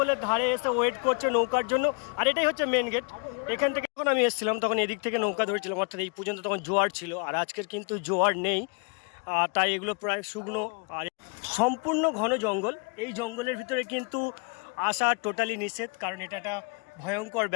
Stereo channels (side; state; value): right; quieter; 36.0 dB